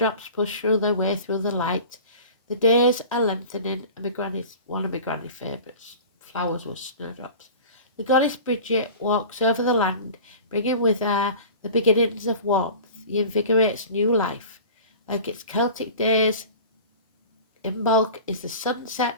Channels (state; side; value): inverted; both; correlation -0.39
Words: push through their way through the light, the days are lengthening, and one of my granny's favourites flowers was snowdrops. The goddess Bridget walks over the land, bringing with her the beginnings of warmth. He invigorates new life. Like its Celtic days, Imbolc is the